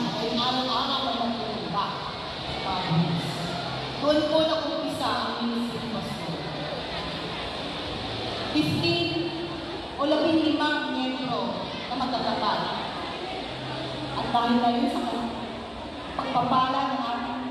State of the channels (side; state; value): both; identical; correlation 1.00